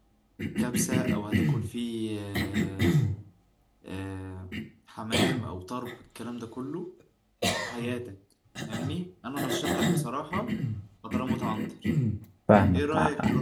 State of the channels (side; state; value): both; identical; correlation 1.00